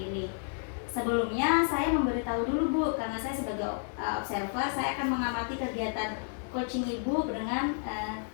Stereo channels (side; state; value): right; silent; digital silence